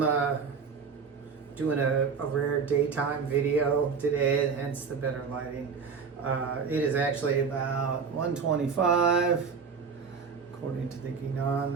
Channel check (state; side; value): quieter; left; 5.7 dB